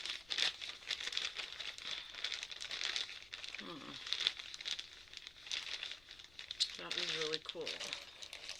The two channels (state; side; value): noise; left; rumble, 23 dB below the sound